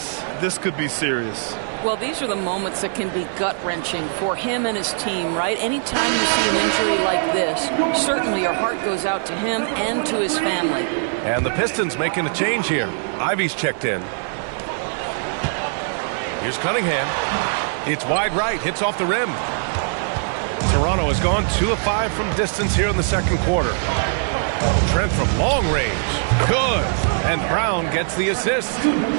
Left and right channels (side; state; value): left; silent; 65 dB below the other